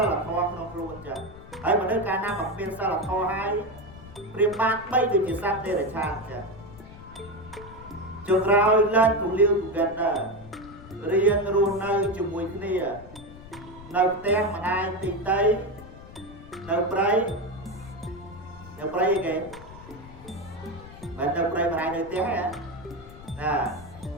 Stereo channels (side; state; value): left; noise; rumble, 17 dB below the sound